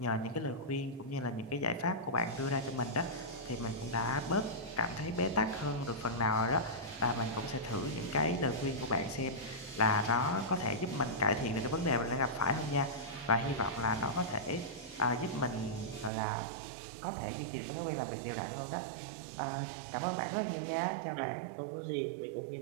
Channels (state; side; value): drops out; left; at 16.1 s